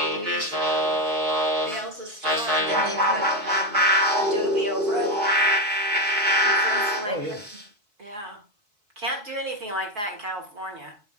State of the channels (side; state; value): left; late; 4.6 ms